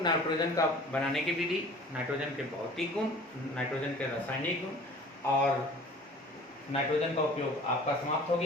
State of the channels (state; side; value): normal; both; correlation 0.46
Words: का बनाने की विधि, नाइट्रोजन के भौतिक गुण, नाइट्रोजन के रासायनिक गुण और नाइट्रोजन का उपयोग आपका समाप्त हो